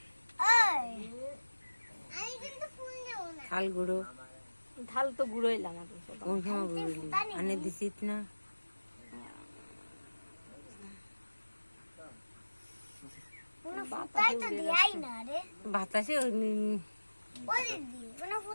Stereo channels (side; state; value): both; inverted; correlation -1.00